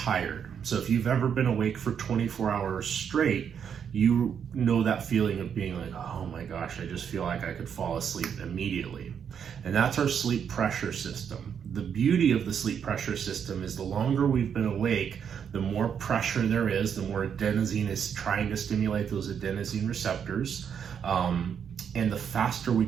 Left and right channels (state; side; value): quieter; left; 7.7 dB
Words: So if you've ever been awake for 24 hours straight, you know that feeling of being like, oh my gosh, I just feel like I could fall asleep immediately. And that's our sleep pressure system. The beauty of the sleep pressure system is the longer we've been awake, the more pressure there is, the more adenosine is trying to stimulate those adenosine receptors. And the faster we